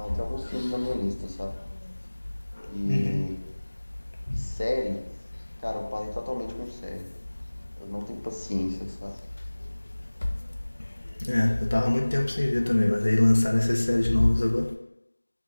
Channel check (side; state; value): both; inverted; correlation -1.00